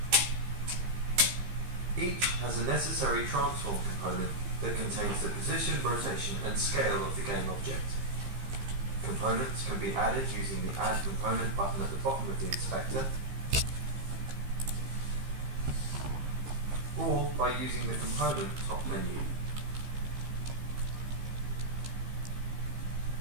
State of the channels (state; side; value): late; left; 15 ms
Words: Each has a necessary transform component that contains the position, rotation, and scale of the game object. Components can be added using the Add Component button at the bottom of the inspector, or by using the component top menu.